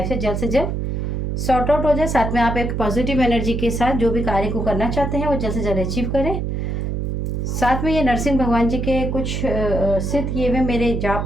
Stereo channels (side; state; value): right; noise; hum, 2 dB below the sound